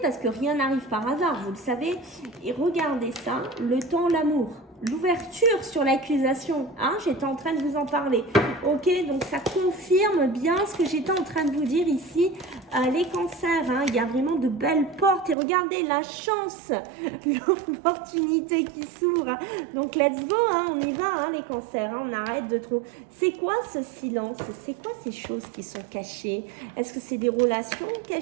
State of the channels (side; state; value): left; drops out; at 15.4 s